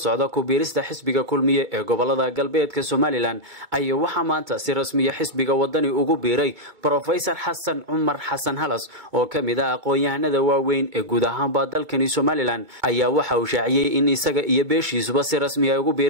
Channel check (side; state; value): left; late; 2.3 ms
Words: ku biirista xisbiga kulmiye ee gobolada galbeedka Somaliland ayaa waxa maanta si rasmi ah xisbiga wadani ugu biiray Professor Xasan Cumar Xasan Halas oo kamid ah aqoon-yahanada waaweyn ee guud ahaan dalkani Somaliland ayaa waxa uu shaaciyay in isaga iyo beeshiisuba si rasmi ah ugu